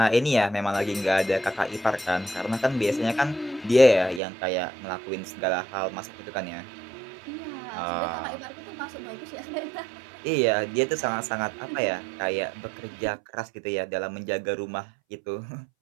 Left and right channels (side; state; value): left; drops out; at 4.2 s